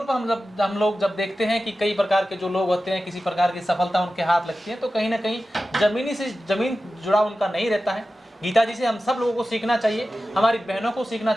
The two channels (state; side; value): normal; both; correlation 0.94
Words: पर हम लोग जब देखते हैं कि कई प्रकार के जो लोग होते हैं, किसी प्रकार की सफलता उनके हाथ लगती है, तो कहीं ना कहीं जमीन जुड़ा उनका नहीं रहता है। गीता जी से हम सब लोगों को सीखना चाहिए, हमारी बहनों को सीखना